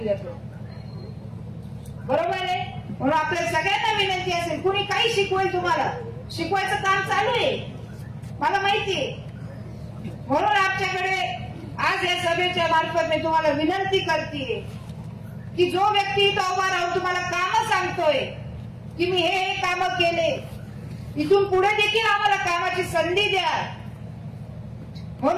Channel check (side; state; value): both; identical; correlation 1.00